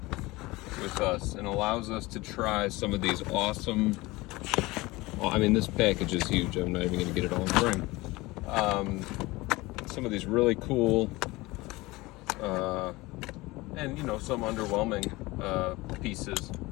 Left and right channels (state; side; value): quieter; right; 21.2 dB